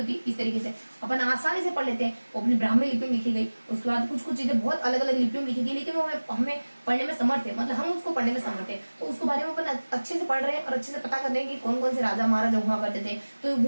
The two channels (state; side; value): inverted; both; correlation -1.00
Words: इस तरीके से अपन आसानी से पढ़ लेते हैं। वो अपनी ब्राह्मी लिपि में लिखी गई, उसके बाद कुछ कुछ चीजें बहुत अलग अलग लिपियों में लिखी गई, लेकिन वो हमें पढ़ने में समर्थ है, मतलब हम उसको पढ़ने में समर्थ है। तो उसके बारे में अपन अच्छे से पढ़ रहे हैं और अच्छे से पता कर रहे हैं कि कौन कौन से राजा महाराजा हुआ करते थे। तो